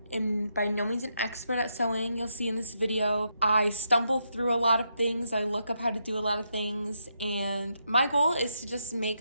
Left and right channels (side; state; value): both; inverted; correlation -0.80